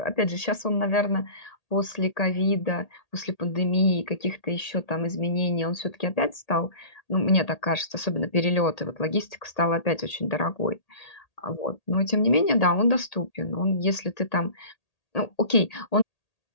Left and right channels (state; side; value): late; right; 1.8 ms